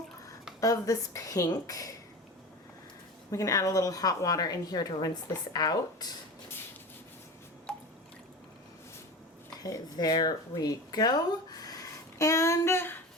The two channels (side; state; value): both; normal; correlation 0.31